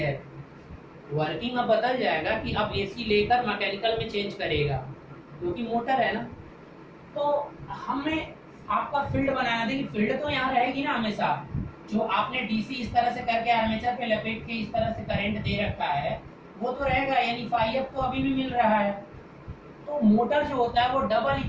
वर्किंग अब बदल जाएगा कि अब एसी लेकर मैकेनिकल में चेंज करेगा, क्योंकि मोटर है ना। तो हमें आपका फील्ड बनाना, देखिए फील्ड तो यहाँ रहेगी ना हमेशा। जो आपने डीसी इस तरह से करके आर्मेचर पे लपेट के इस तरह से करंट दे रखा है वो तो रहेगा, यानी फाई तो अभी भी मिल रहा है। तो मोटर जो होता है वो डबल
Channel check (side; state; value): both; identical; correlation 1.00